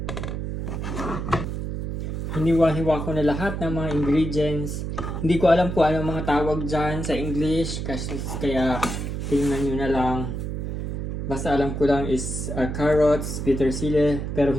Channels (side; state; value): right; noise; hum, 4 dB below the sound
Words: Hiniwa-hiwa ko na lahat ng mga ingredients. Hindi ko alam kung anong mga tawag dyan sa English. Kaya tingnan nyo na lang. Basta alam ko lang is carrots, petersilie. Pero